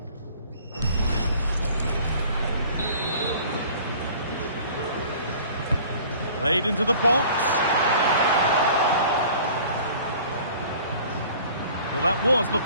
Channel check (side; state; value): both; inverted; correlation -0.48